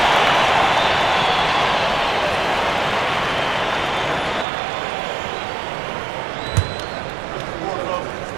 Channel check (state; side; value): drops out; left; at 4.5 s